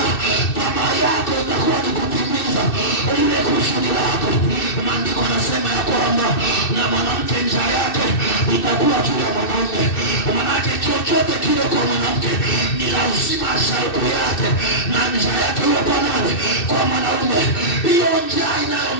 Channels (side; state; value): right; late; 2.6 ms